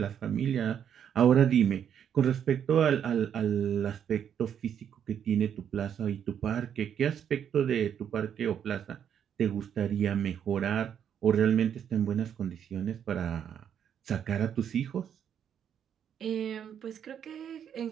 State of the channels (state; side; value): quieter; left; 8.7 dB